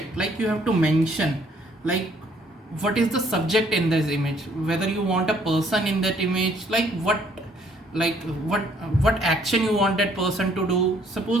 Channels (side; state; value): both; normal; correlation 0.63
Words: Like you have to mention what is the subject in this image, whether you want a person in that image, what action you want that person to do.